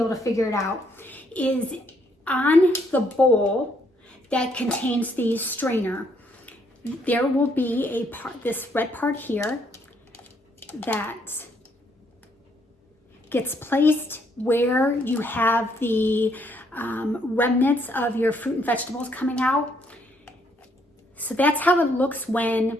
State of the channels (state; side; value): normal; both; correlation 0.70